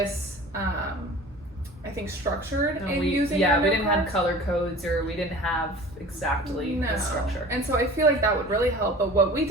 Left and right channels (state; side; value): normal; both; correlation 0.42